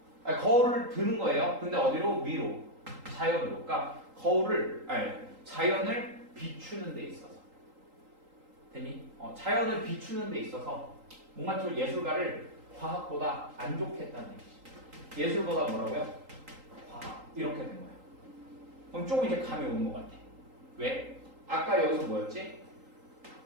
아니, 거울을 드는 거예요. 근데 어디로? 위로. 자연으로. 그러니까 자연을 비추는 데 있어서. 됐니? 자연을 비추는 데 있어서 뭔가 좀 예술가를 과학보다 안 좋게 했다는 얘기지. 예술보다 뭐라고요? 과학. 이렇게 된 거야. 그럼 조금 이제 감이 오는 것 같아. 왜? 아까 여기서 뭐였지?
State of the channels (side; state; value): left; late; 3.8 ms